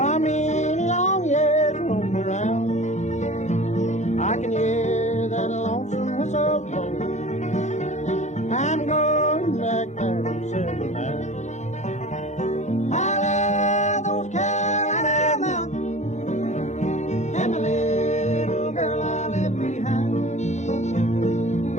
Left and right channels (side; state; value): right; late; 0.34 ms